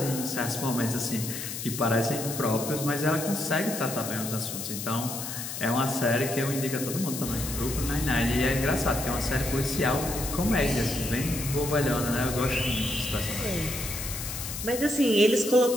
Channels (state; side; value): noise; left; hiss, 6 dB below the sound